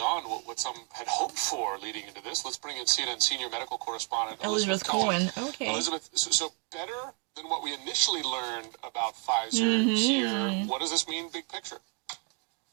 what some had hoped for leading into this. Let's bring in CNN senior medical correspondent Elizabeth Cohen. Okay. Elizabeth, so better than what we initially learned about Pfizer here. What does this mean, big picture?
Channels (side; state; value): left; quieter; 36.3 dB